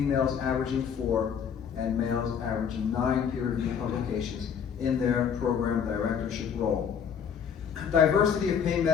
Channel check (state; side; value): quieter; right; 7.5 dB